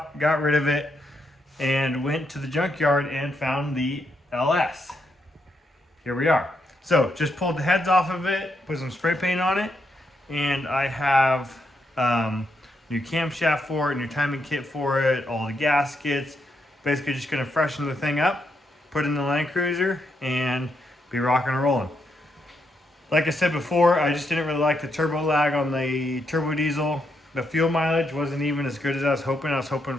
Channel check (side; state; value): both; normal; correlation 0.80